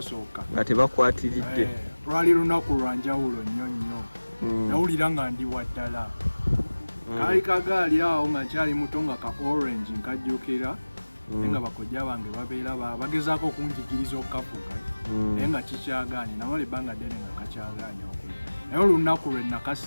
nga tebakwatiridde lwali lunaku lwa njawulo nnyo nnyo nawulira nga ndi waddala kaali kagaali awo nga nkyali muto nga ka orange nkajjukira naye nga bakojja bange babeera bagezaako okunjigiriza okukavuga naye nga kikyagaanye namala ebbanga ddene nga kakyagaanye okuli naye olunaku lwe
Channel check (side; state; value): both; inverted; correlation -1.00